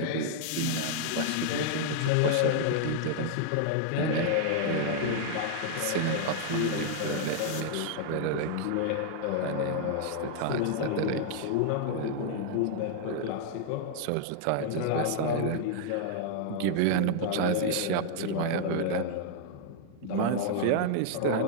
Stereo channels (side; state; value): both; different; correlation -0.01